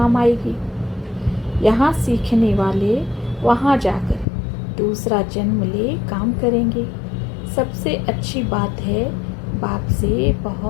आएगी। यहाँ सीखने वाले वहाँ जाकर दूसरा जन्म ले काम करेंगे। सबसे अच्छी बात है बाप से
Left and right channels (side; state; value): right; drops out; at 4.2 s